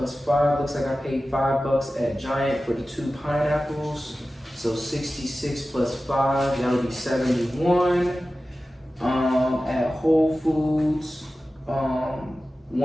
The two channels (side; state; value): both; normal; correlation 0.95